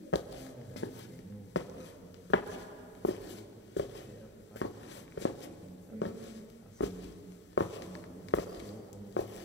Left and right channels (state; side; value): normal; both; correlation 0.01